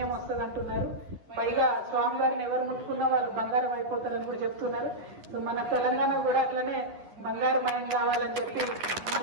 వస్తుంది అంటున్నారు. పైగా స్వామివారిని ఎవరు ముట్టుకున్నా వాళ్ళు బంగారం అయిపోతారని కూడా చెప్తున్నారు. సో మన తెలంగాణ కూడా అట్లనే బంగారమయం కావాలని చెప్పి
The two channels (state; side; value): late; left; 10 ms